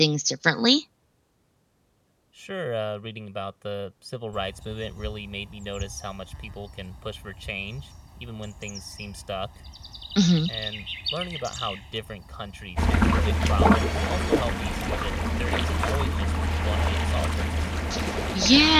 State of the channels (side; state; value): both; identical; correlation 1.00